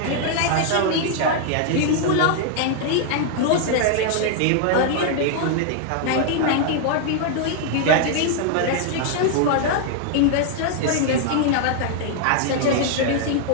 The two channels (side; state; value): both; different; correlation 0.00